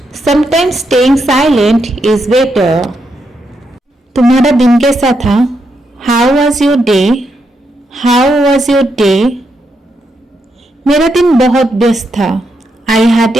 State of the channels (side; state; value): both; normal; correlation 0.81